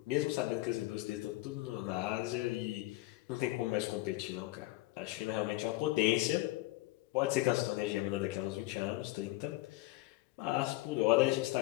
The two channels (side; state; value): right; quieter; 18.9 dB